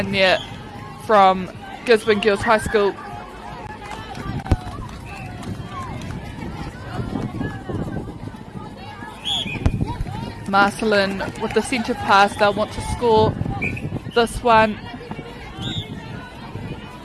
there from Gisborne Girls High School. Marcelin with the centre pass, they'll want to score this one.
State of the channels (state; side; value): identical; both; correlation 1.00